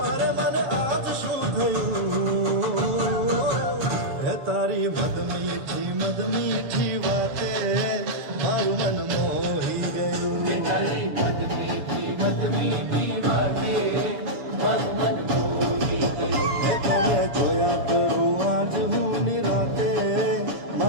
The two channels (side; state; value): left; late; 7.4 ms